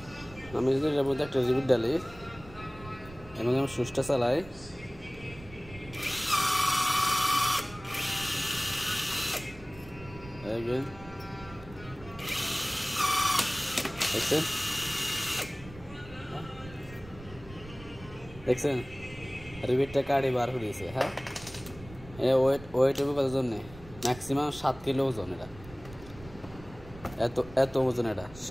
আমি যদি এর মধ্যে একটা রিপিট ডালি এবং আমি সুইচটা চালাই, দেখছেন রিপিটটা কাটি বার করে দিয়েছে। হ্যাঁ, ওয়েট হবে কত জন্য? ম্যাক্সিমাম 7 কিলো ওজন। এটা এত ওজন, এটা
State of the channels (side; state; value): right; noise; rumble, 18 dB below the sound